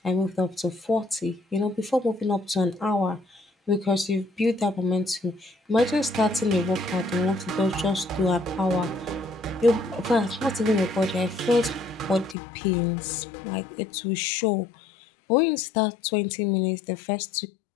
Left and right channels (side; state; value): right; drops out; at 12.4 s